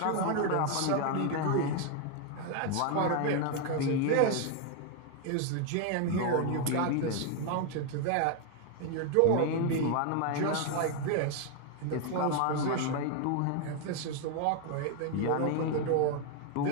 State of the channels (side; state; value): both; different; correlation 0.01